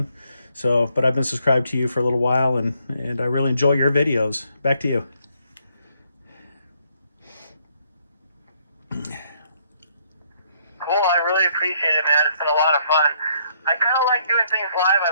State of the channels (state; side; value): inverted; both; correlation -0.70